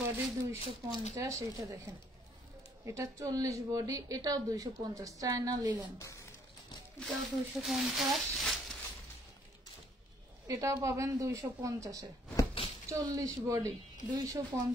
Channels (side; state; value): both; normal; correlation 0.64